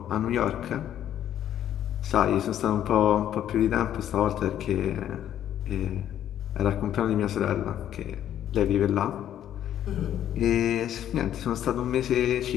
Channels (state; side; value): quieter; right; 10.9 dB